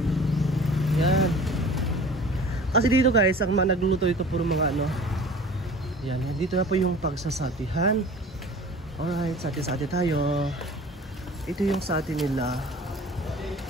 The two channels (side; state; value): both; normal; correlation 0.43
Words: Yan. Kasi dito guys, ang mga nagluluto ito puro mga yan, dito na po yung pagsasatihan. Alright, sati-sati tayo. Ito yung sati nila.